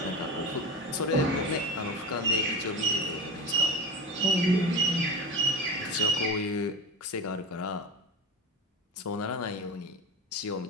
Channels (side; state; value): both; normal; correlation 0.26